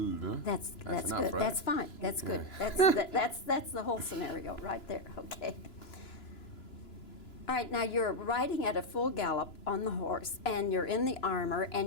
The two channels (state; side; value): late; right; 2.9 ms